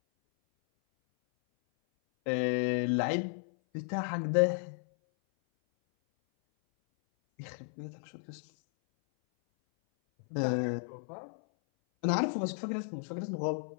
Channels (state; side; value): silent; right; 55 dB below the other